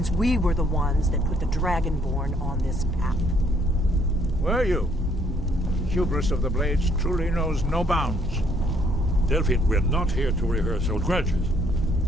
we were the ones that put the Dragonborn on this path. Were you? Hubris of the Blades truly knows no bounds. Delphine, we're not here to rehearse old grudges.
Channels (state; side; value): normal; both; correlation 0.66